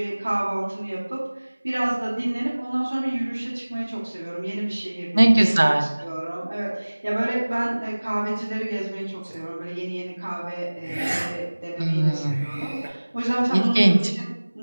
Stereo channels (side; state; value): both; inverted; correlation -1.00